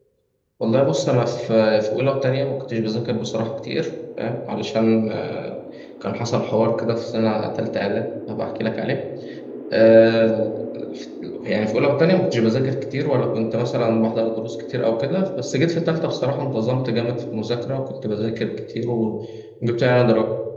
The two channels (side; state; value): both; identical; correlation 1.00